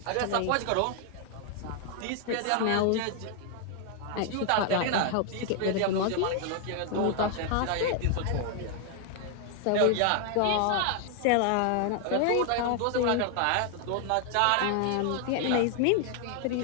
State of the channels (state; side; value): different; both; correlation 0.00